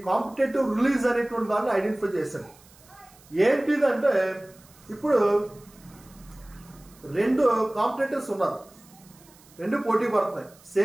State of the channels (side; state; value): right; noise; hiss, 26 dB below the sound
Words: కాంపిటేటివ్ రిలీజ్ అనేటువంటి దాన్ని ఐడెంటిఫై చేశాడు. ఏంటిదంటే ఇప్పుడు రెండు కాంపిటేటర్స్ ఉన్నారు, రెండు పోటీ పడుతున్నాయి.